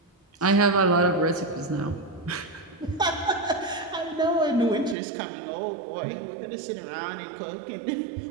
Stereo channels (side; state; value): left; drops out; at 5.0 s